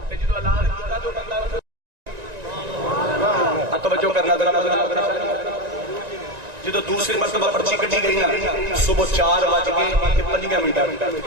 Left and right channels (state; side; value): late; left; 1.9 ms